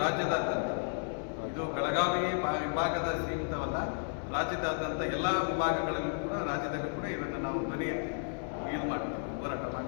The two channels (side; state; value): right; silent; 56 dB below the other